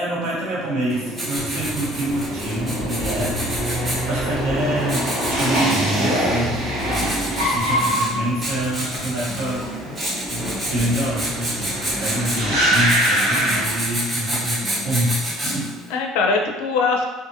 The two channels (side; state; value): both; normal; correlation 0.53